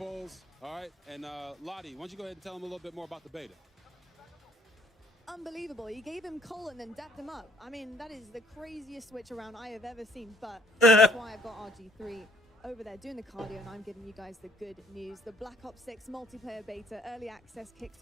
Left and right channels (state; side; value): normal; both; correlation 0.62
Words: All right. And Lottie, why don't you go ahead and tell them a little bit more about the beta? Unbelievable. You gave him coal and then dapped him up. I mean, that is the craziest switch around I have ever seen, but that's why I've got RG3 over there doing the cardio, and I'm giving you guys the good news. The Black Ops 6 multiplayer beta early access